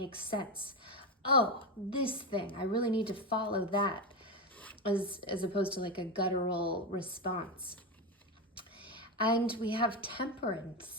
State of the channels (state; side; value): normal; both; correlation 0.13